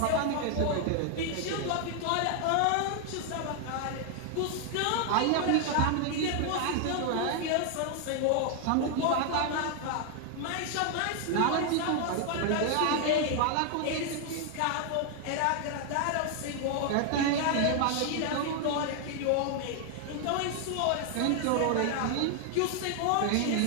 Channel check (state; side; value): different; both; correlation 0.00